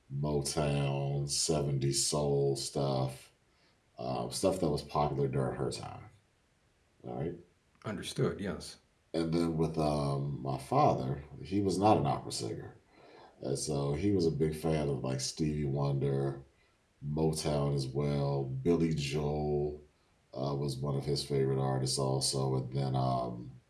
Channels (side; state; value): both; identical; correlation 1.00